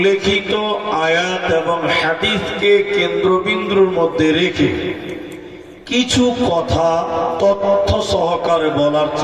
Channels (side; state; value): both; identical; correlation 1.00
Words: আয়াত এবং হাদিসকে কেন্দ্রবিন্দুর মধ্যে রেখে কিছু কথা তথ্য সহকারে বলার